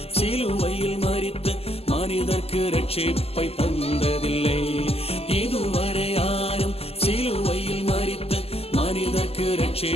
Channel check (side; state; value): right; late; 0.29 ms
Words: சிலுவையில் மரித்த மனிதர்க்கு ரட்சிப்பை தந்ததில்லை. இதுவரை யாரும் சிலுவையில் மரித்த மனிதர்க்கு